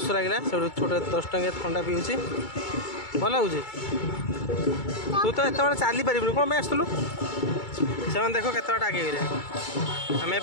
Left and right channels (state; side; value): late; right; 2.3 ms